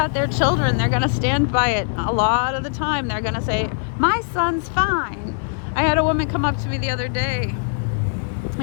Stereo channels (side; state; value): right; silent; digital silence